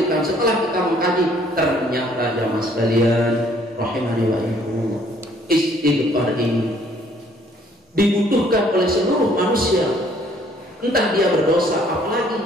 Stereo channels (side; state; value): both; normal; correlation 0.61